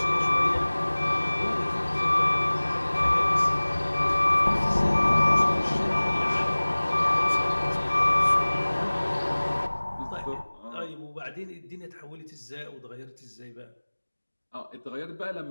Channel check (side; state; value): both; inverted; correlation -1.00